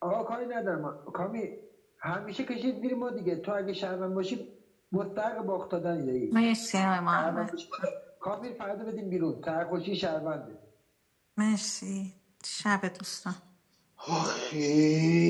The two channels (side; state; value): both; identical; correlation 1.00